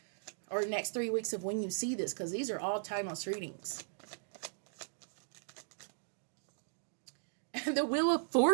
Or next 3 weeks of when you see this. Because these are all timeless readings. The Wheel of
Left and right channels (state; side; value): silent; left; digital silence